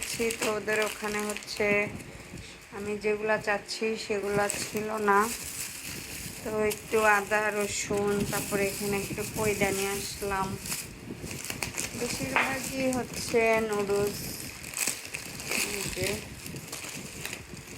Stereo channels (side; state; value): both; identical; correlation 1.00